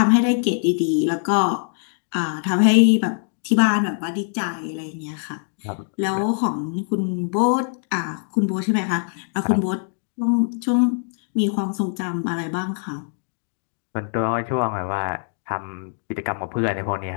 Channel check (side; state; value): right; silent; digital silence